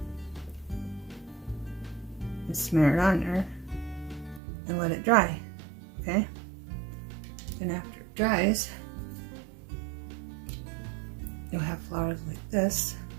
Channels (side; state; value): left; drops out; at 4.4 s